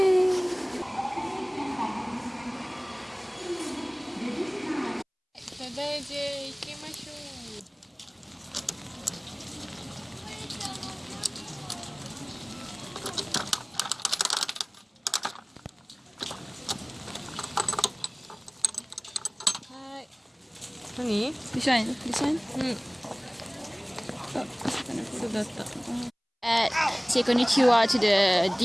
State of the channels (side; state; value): both; identical; correlation 1.00